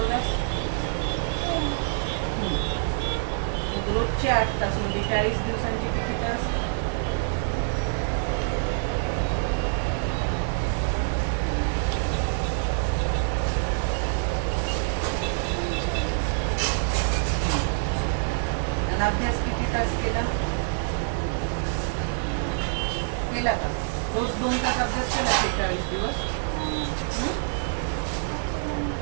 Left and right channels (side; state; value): left; silent; 61 dB below the other